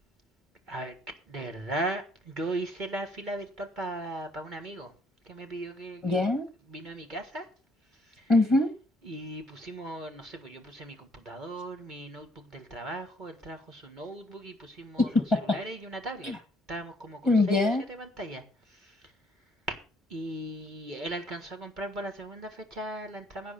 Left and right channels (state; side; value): normal; both; correlation 0.66